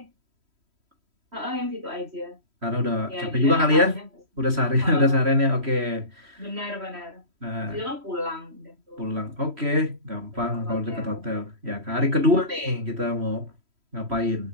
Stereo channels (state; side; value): late; left; 3.1 ms